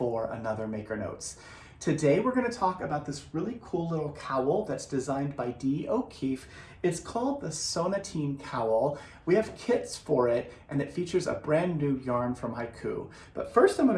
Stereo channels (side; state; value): both; identical; correlation 1.00